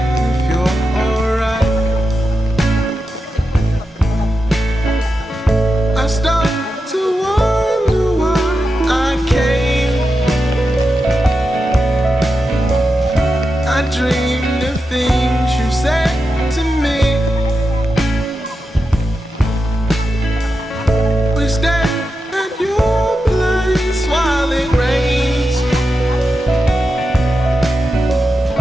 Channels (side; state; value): both; normal; correlation 0.90